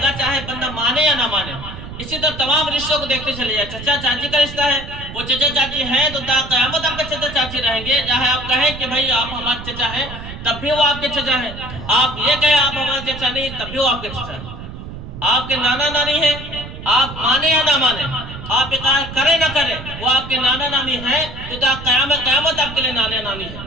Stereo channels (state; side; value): noise; right; rumble, 11 dB below the sound